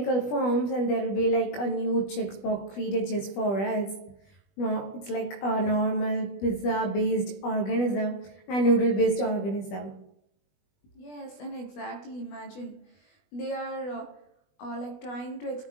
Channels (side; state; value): right; late; 20 ms